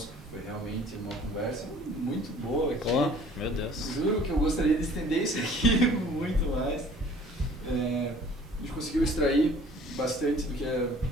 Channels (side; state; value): both; normal; correlation 0.51